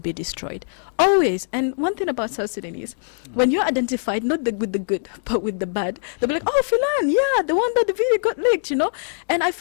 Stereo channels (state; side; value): silent; right; digital silence